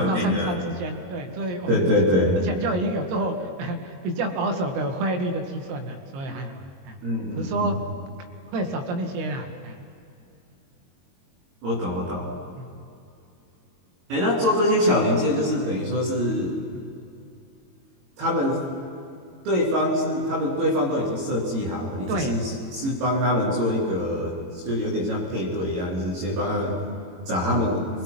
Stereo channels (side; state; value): left; late; 22 ms